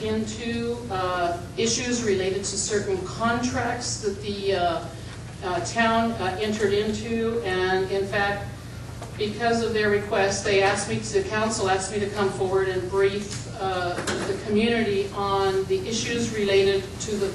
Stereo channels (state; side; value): identical; both; correlation 1.00